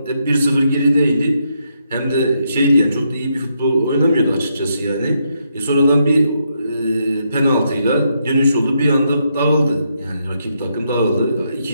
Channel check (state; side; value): inverted; both; correlation -0.79